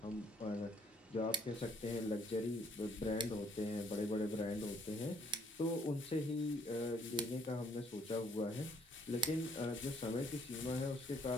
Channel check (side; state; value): both; normal; correlation 0.64